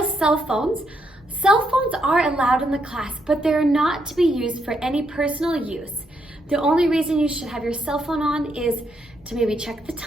cell phones. Cell phones are allowed in the class, but they're not to be used for any personal use. The only reason you should have your cell phone on is to maybe check the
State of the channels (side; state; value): both; normal; correlation 0.77